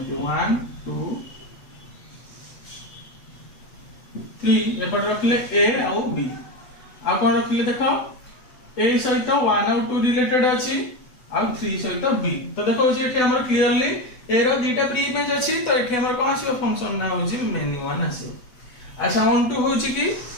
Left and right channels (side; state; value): right; late; 8.0 ms